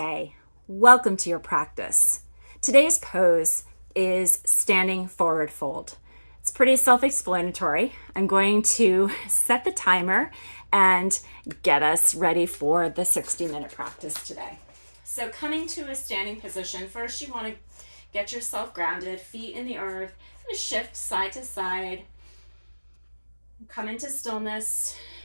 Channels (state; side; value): inverted; both; correlation -1.00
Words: Welcome to your practice. Today's pose is standing forward fold. It's pretty self-explanatory. I'm going to set the timer and get us ready for the 60-minute practice today. So coming to a standing position, first you want to get yourself grounded, feet in the earth, and shift side to side. Come into stillness.